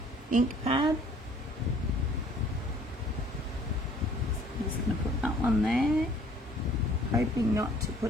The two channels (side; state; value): both; normal; correlation 0.56